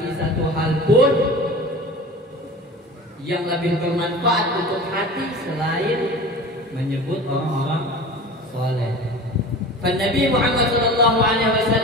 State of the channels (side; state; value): both; normal; correlation 0.36